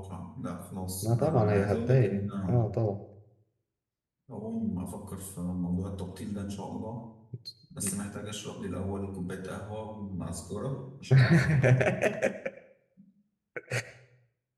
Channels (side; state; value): both; identical; correlation 1.00